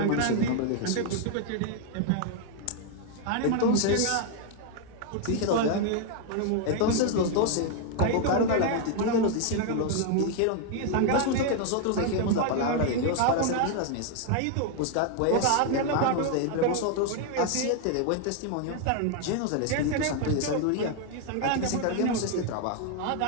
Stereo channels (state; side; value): different; both; correlation 0.00